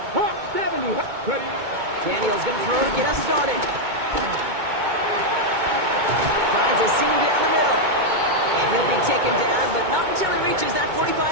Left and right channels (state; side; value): late; left; 2.2 ms